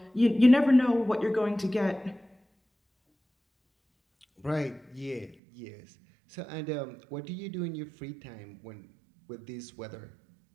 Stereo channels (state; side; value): drops out; left; at 5.4 s